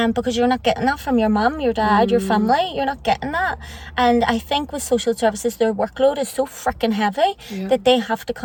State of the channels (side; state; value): both; identical; correlation 1.00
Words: because you're not getting that from your mum, your dad, your family. You're not getting that. And I think with social services, their workload is so freaking heavy that they have to